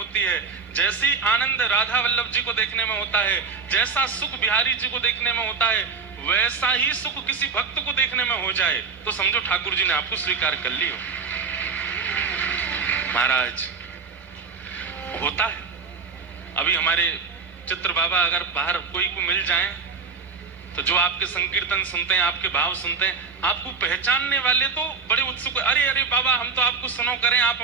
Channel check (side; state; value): left; quieter; 5.0 dB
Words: है, जैसी आनंद राधा वल्लभ जी को देखने में होता है, जैसा सुख बिहारी जी को देखने में होता है, वैसा ही सुख किसी भक्त को देखने में हो जाए तो समझो ठाकुर जी ने आपको स्वीकार कर लियो। महाराज होता है। अभी हमारे चित्र बाबा अगर बाहर कोई को मिल जाए तो जो आपके संकीर्तन सुनते हैं, आपके भाव सुनते हैं, आपको पहचानने वाले तो बड़े उत्सुक, अरे अरे बाबा हम तो आपको सुनो करें, आप